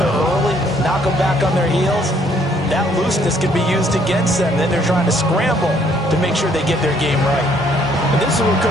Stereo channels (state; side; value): normal; both; correlation 0.65